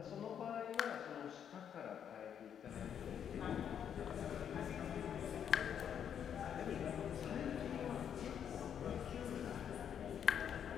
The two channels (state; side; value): quieter; right; 8.6 dB